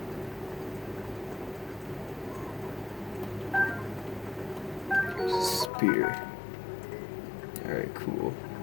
Spear. Alright, cool.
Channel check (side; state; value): right; drops out; at 5.7 s